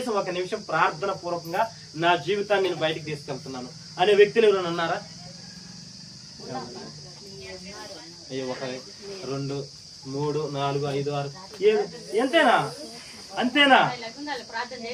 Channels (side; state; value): both; identical; correlation 1.00